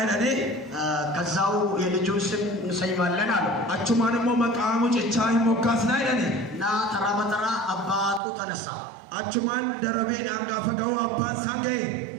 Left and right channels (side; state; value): left; drops out; at 8.2 s